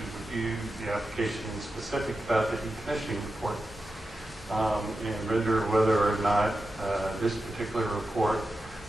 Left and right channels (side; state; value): both; normal; correlation 0.91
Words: review the application in specific about the decommissioning report and render whether or not this particular report